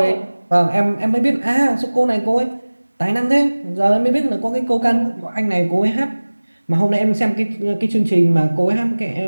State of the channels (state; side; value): inverted; both; correlation -1.00